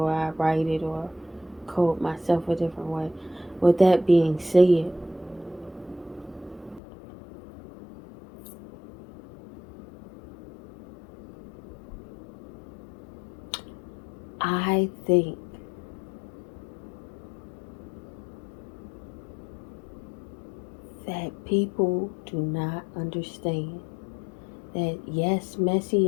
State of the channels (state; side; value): drops out; right; at 6.8 s